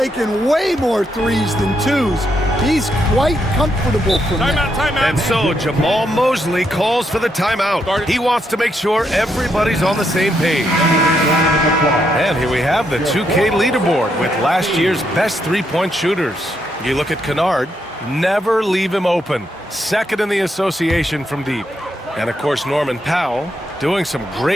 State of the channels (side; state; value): both; normal; correlation 0.78